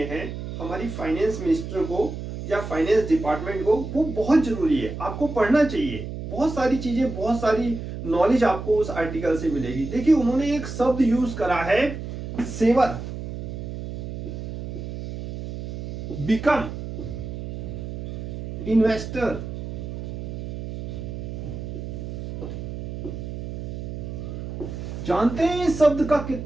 हैं हमारी फाइनेंस मिनिस्टर को या फाइनेंस डिपार्टमेंट को, वो बहुत जरूरी है, आपको पढ़ना चाहिए। बहुत सारी चीजें, बहुत सारी नॉलेज आपको उस आर्टिकल से मिलेगी। देखिए, उन्होंने एक शब्द यूज करा है, सेवर, बिकम इन्वेस्टर। जानते हैं इस शब्द का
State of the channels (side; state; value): right; noise; hum, 7 dB below the sound